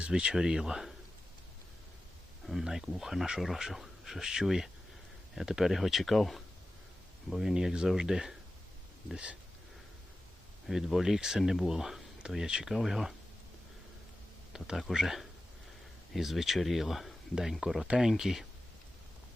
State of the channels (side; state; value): both; normal; correlation 0.94